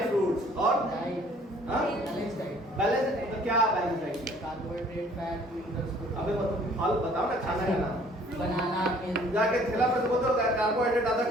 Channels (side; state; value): both; normal; correlation 0.56